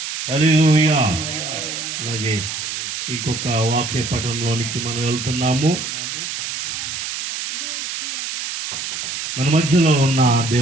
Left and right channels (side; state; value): right; noise; hiss, 4 dB below the sound